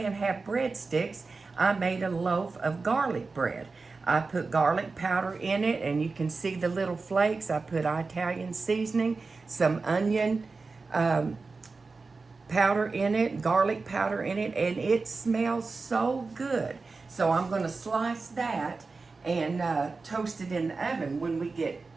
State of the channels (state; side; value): quieter; left; 4.1 dB